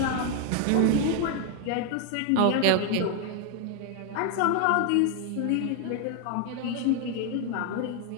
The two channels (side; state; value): both; different; correlation 0.00